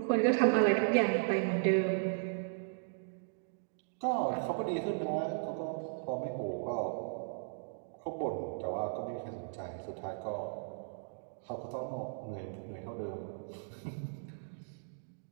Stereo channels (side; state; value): left; silent; digital silence